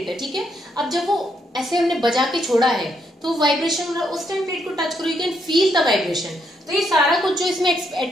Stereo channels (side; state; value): both; normal; correlation 0.76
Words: है. ठीक है, अब जब वो ऐसे हमने बजा के छोड़ा है तो वाइब्रेशन हो रहा है, उस टाइम प्लेट को टच करो, you can feel the vibration. तो ये सारा कुछ जो इसमें